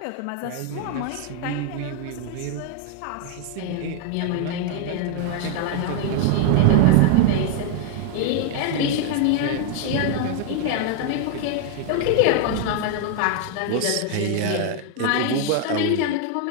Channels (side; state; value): both; different; correlation 0.00